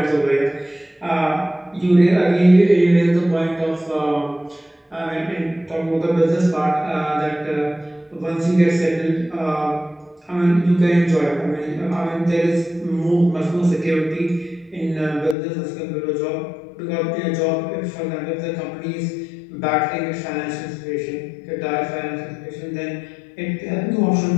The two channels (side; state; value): right; drops out; at 15.4 s